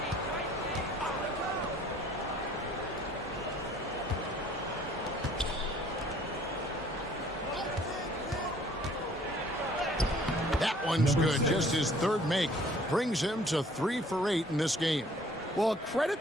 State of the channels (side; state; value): both; normal; correlation 0.56